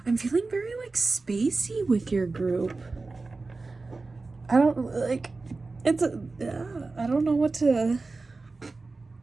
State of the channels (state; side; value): quieter; left; 3.7 dB